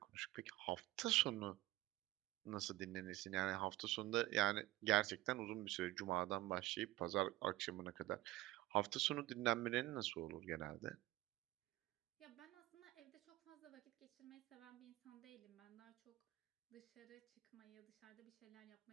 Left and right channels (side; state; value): left; quieter; 17.5 dB